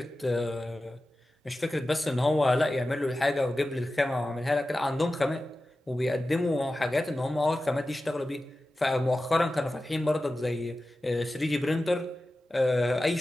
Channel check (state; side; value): normal; both; correlation 0.94